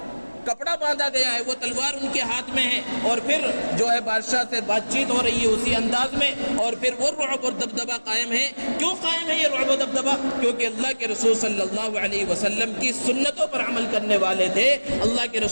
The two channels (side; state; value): both; inverted; correlation -1.00